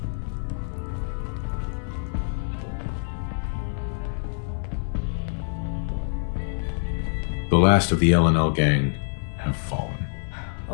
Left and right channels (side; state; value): right; silent; 61 dB below the other